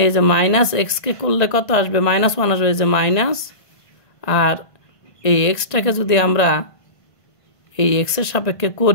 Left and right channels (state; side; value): late; right; 1.5 ms